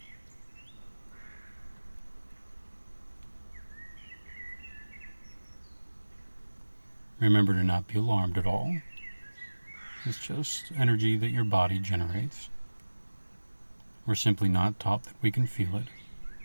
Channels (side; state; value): both; inverted; correlation -1.00